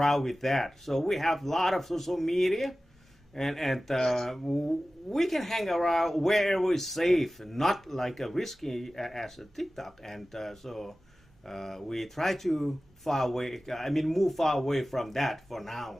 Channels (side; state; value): both; normal; correlation 0.96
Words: with that. So we have a lot of social media, and we can hang around wherever it's safe, not like a risky as a TikTok. And so we try to move far away from that for